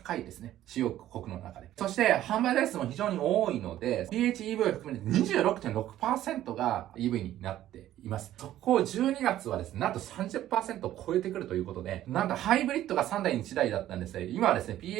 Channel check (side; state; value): left; quieter; 13.1 dB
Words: いですね。主要国の中で。そして販売台数も非常に多いので、PHEV を含めて 26.6% が EV になっています。そこを12月はですね、なんと 30% を超えてくるということで、なんとハイブリッドが3台に1台だったんですが、今はですね、